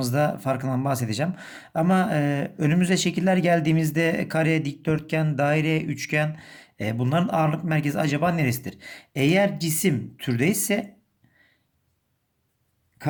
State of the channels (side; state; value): both; identical; correlation 1.00